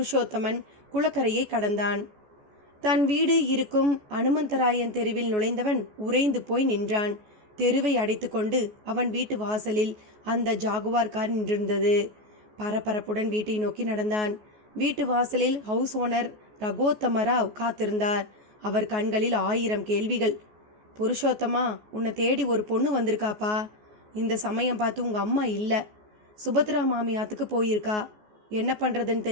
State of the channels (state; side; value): late; left; 14 ms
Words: குளக்கரையை கடந்தான். தன் வீடு இருக்கும் அனுமந்தராயன் தெருவில் நுழைந்தவன் உறைந்து போய் நின்றான். தெருவை அடைத்து கொண்டு அவன் வீட்டு வாசலில் அந்த ஜாகுவார் கார் நின்றிருந்தது. பரபரப்புடன் வீட்டை நோக்கி நடந்தான். வீட்டு வாசலில் ஹவுஸ் ஓனர் ரகோத்தமராவ் காத்திருந்தார். அவர் கண்களில் 1000 கேள்விகள். புருஷோத்தமா, உன்னை தேடி ஒரு பொண்ணு வந்திருக்காப்பா. இந்த சமயம் பார்த்து உங்கள் அம்மா இல்லை, சுபத்ரா மாமியாத்துக்கு போயிருக்கா. என்ன பண்ணுறதுன்னு